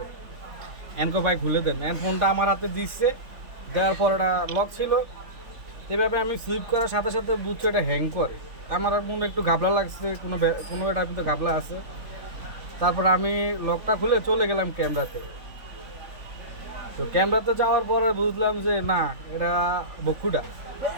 এনকো ভাই খুলে দেন। ফোনটা আমার হাতে দিচ্ছে, দেওয়ার পর এটা লক ছিল। এভাবে আমি সুইপ করার সাথে সাথে বুঝছি এটা হ্যাং করে। আমার মনে একটু ঘাবলা লাগছে, কোনো এটা কিন্তু ঘাবলা আছে। তারপর আমি লকটা খুলে চলে গেলাম ক্যামেরাতে। তো ক্যামেরাতে যাওয়ার পরে বুঝলাম যে না, এটা বকুটা,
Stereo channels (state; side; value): late; left; 3.8 ms